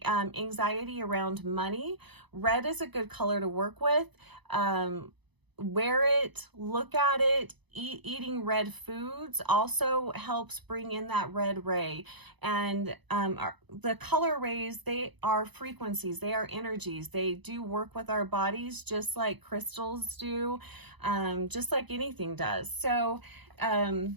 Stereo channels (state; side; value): late; left; 1.0 ms